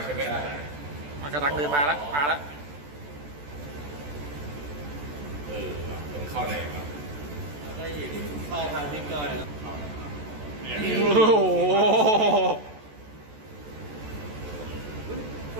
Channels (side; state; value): left; late; 14 ms